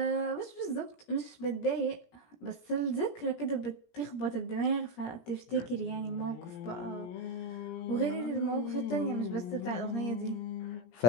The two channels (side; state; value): right; late; 17 ms